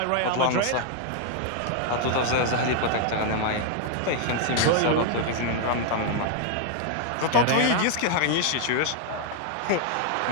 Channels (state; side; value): different; both; correlation 0.00